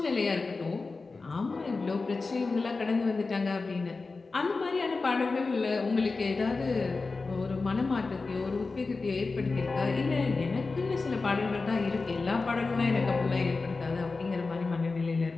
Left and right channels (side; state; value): right; quieter; 3.9 dB